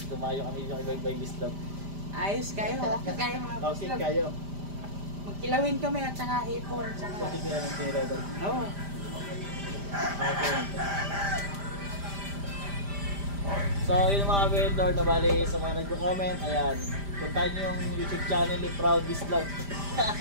Tumayo kami yung ibang bislog. Ayos kayo, okay kayo mga Okay Pascual. kayo. Magkilawin kami at saka hipon. Okay kaya ng tira doon. Oo. Okay. So, yung mga vendor na bali sa mga nagko-comment, ayan, puntahan nyo yung YouTube channel ni Proud Bislog.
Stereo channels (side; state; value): left; late; 5.0 ms